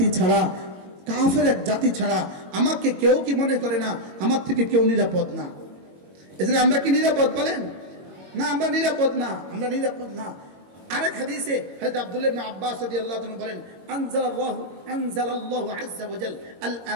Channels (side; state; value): left; late; 21 ms